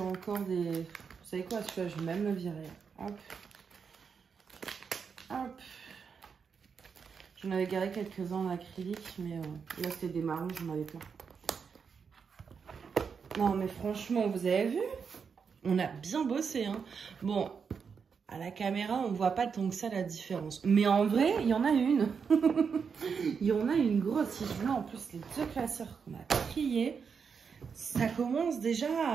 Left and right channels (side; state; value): left; quieter; 6.1 dB